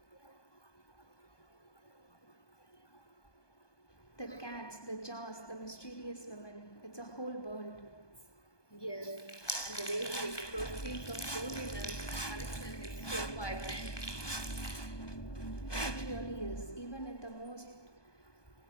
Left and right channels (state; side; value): late; right; 1.2 ms